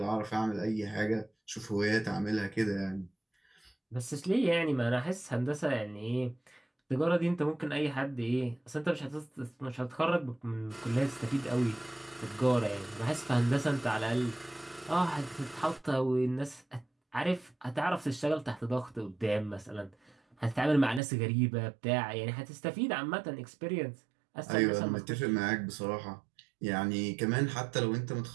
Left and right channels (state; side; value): drops out; left; at 21.0 s